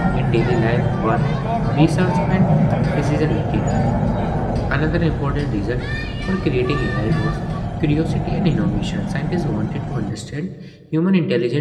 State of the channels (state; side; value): identical; both; correlation 1.00